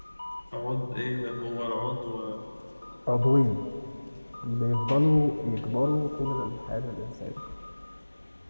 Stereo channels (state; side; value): inverted; both; correlation -1.00